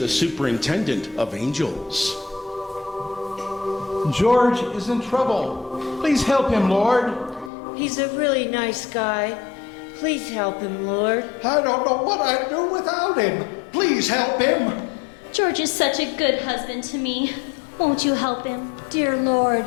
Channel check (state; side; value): drops out; right; at 7.5 s